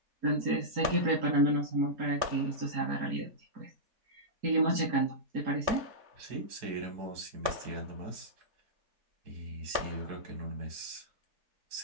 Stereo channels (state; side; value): late; left; 4.3 ms